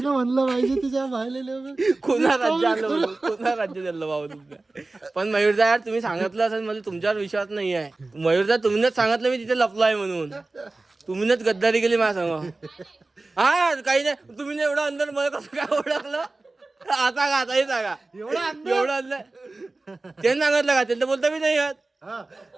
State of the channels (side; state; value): left; quieter; 3.2 dB